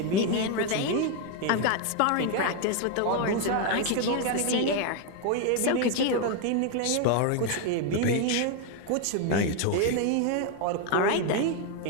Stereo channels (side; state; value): both; different; correlation 0.01